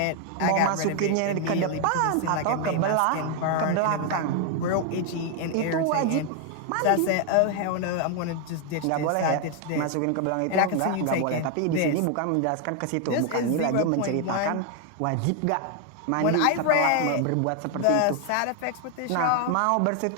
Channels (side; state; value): both; different; correlation 0.00